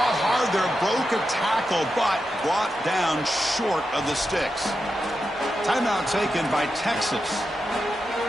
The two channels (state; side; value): normal; both; correlation 0.88